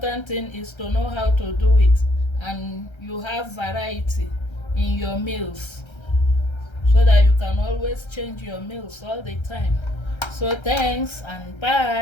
thing is to know how to do it, and you have variety in your meals so that you can always change your meals all the time. So thanks and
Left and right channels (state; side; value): late; right; 1.3 ms